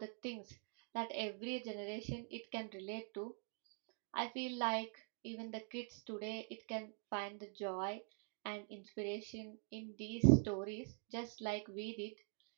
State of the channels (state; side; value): quieter; left; 40.0 dB